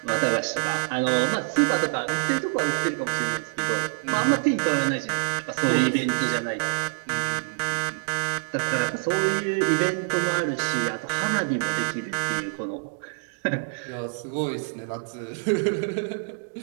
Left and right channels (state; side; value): silent; left; digital silence